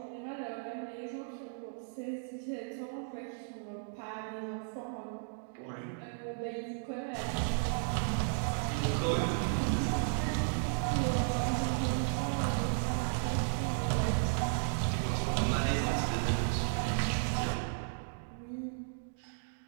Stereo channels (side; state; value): left; silent; digital silence